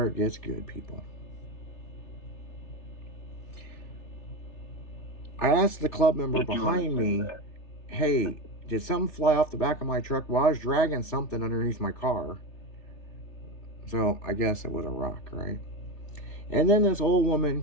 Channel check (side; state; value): right; late; 3.3 ms